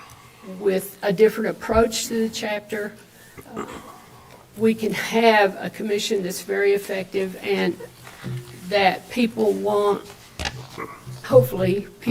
with a different approach to the chapter, we can have a commission that's very effective and that people won't, hopefully,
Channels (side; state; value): both; identical; correlation 1.00